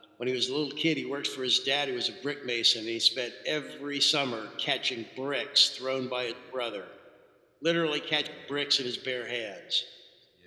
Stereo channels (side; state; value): both; identical; correlation 1.00